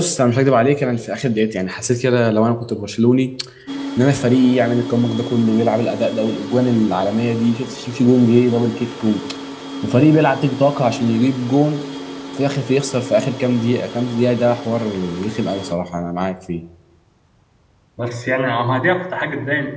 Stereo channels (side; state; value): both; identical; correlation 1.00